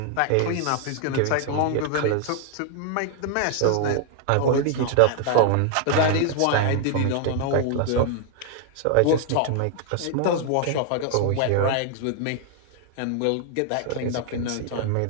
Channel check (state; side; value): different; both; correlation 0.00